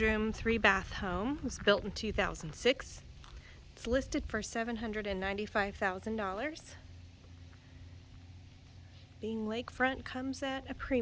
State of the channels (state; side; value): identical; both; correlation 1.00